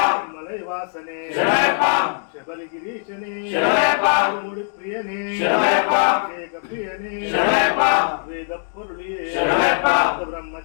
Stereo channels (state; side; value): silent; right; digital silence